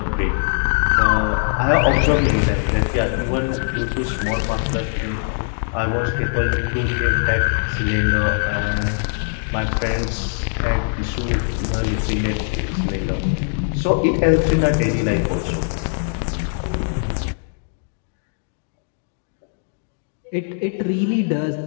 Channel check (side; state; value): right; silent; digital silence